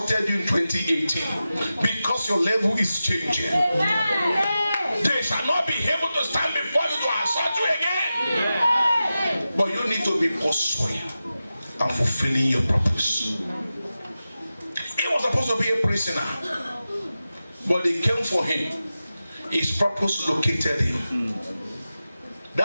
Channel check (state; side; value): inverted; both; correlation -0.93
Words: you in 2018, because your level is changing, they shall not be able to stand before you to assault you again. But you need to be pursuing and fulfilling your purpose. He was supposed to be a prisoner, but they came for him. His purpose located him.